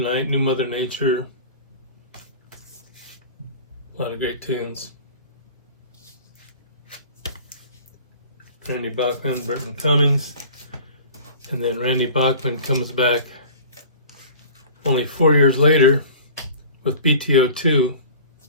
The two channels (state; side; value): inverted; both; correlation -0.42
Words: New Mother Nature. A lot of great tunes. Randy Bachman, Burton Cummings. And then Randy Bachman comes back only 4 years later with BTO2,